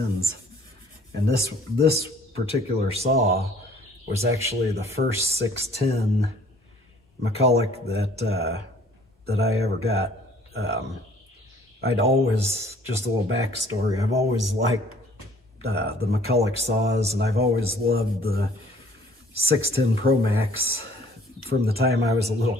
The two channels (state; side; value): normal; both; correlation 0.56